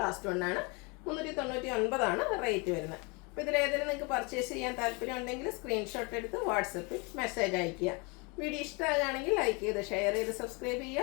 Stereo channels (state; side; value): quieter; right; 29.9 dB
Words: ലാസ്റ്റ് വണ്ണാണ്. 399 ആണ് റേറ്റ് വരുന്നത്. അപ്പോൾ ഇതിലേതെങ്കിലും നിങ്ങൾക്ക് പർച്ചേസ് ചെയ്യാൻ താല്പര്യം ഉണ്ടെങ്കിൽ സ്ക്രീൻഷോട്ട് എടുത്ത് വാട്സപ്പിൽ മെസ്സേജ് അയയ്ക്കുക. വീഡിയോ ഇഷ്ടമാകുകയാണെങ്കിൽ ലൈക്ക് ചെയ്ത് ഷെയർ ചെയ്ത് സബ്സ്ക്രൈബ്